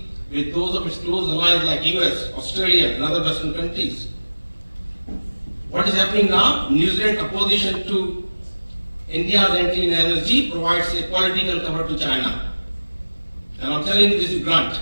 with those of its close allies like US, Australia, and other Western countries. What is happening now? New Zealand's opposition to India's entry in NSG provides a political cover to China. And I'm telling you this is blunt.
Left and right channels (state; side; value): inverted; both; correlation -1.00